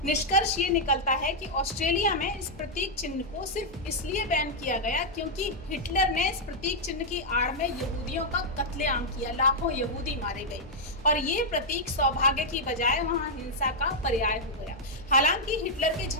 निष्कर्ष ये निकलता है कि ऑस्ट्रेलिया में इस प्रतीक चिन्ह को सिर्फ इसलिए बैन किया गया क्योंकि हिटलर ने इस प्रतीक चिन्ह की आड़ में यहूदियों का कत्लेआम किया, लाखों यहूदी मारे गए और ये प्रतीक सौभाग्य की बजाय वहां हिंसा का पर्याय हो गया। हालांकि हिटलर के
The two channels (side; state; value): both; normal; correlation -0.04